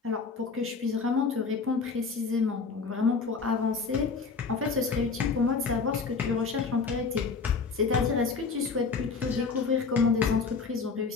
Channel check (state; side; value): quieter; right; 4.9 dB